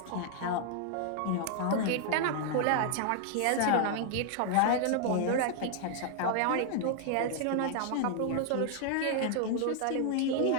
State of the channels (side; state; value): both; different; correlation 0.00